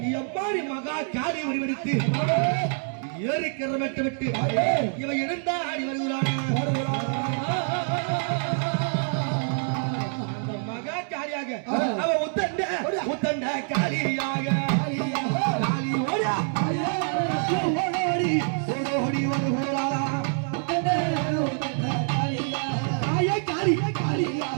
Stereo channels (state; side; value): silent; left; 61 dB below the other